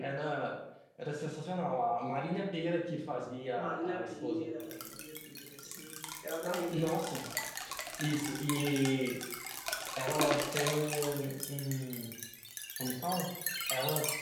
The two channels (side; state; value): both; identical; correlation 1.00